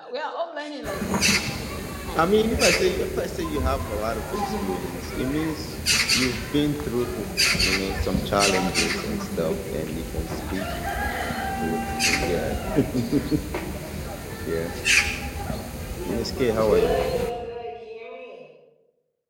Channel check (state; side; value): identical; both; correlation 1.00